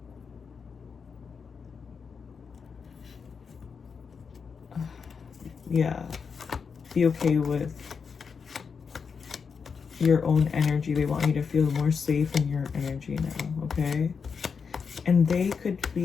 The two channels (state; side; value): quieter; right; 5.8 dB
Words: be okay with your own energy. They want you to feel more safe in your energy now, okay? And they could